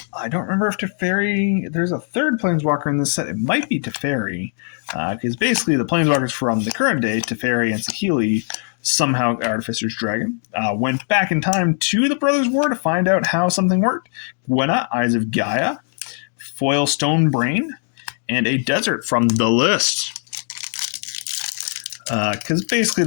I don't remember if Teferi... There's a third Planeswalker in this set. It might be Teferi. Because basically the Planeswalkers from the current day, Teferi and Saheeli, somehow Artificer's Dragon, went back in time to the Brothers' War to find out how something worked. Gwenna, Eyes of Gaia, Foil Stone Brain, and a Desert from the list. because basically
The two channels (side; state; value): right; silent; 56 dB below the other